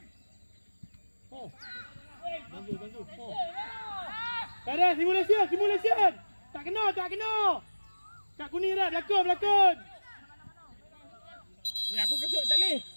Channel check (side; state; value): both; inverted; correlation -1.00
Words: Bantu. Oh. Tak ada simulasi. Tak kena. Kat kuning dah berlakon. Ni aku kesut tak boleh.